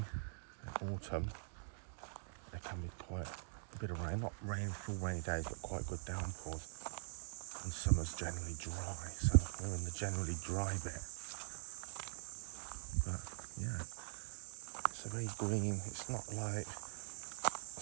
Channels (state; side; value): silent; left; digital silence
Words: and autumn. There can be quite a bit of rain, not rain, full rainy days, but quite good downpours. And summer's generally dry, so we're in the generally dry bit. But yeah, it's a very green, it's not like